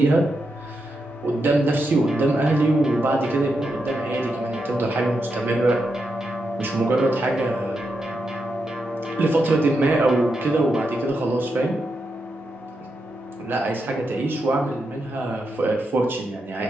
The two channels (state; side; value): normal; both; correlation 0.85